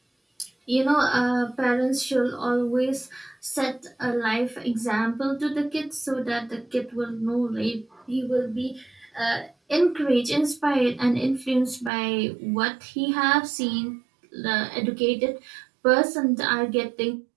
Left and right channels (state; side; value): drops out; left; at 11.9 s